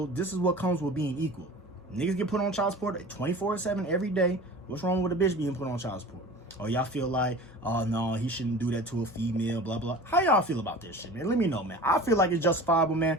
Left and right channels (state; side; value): normal; both; correlation 0.38